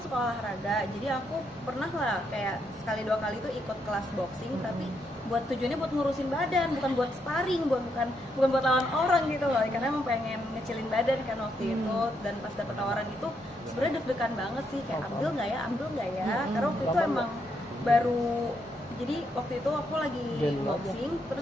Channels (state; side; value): normal; both; correlation 0.78